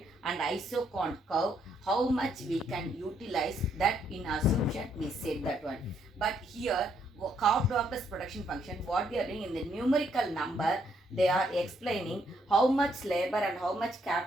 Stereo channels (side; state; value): both; normal; correlation 0.72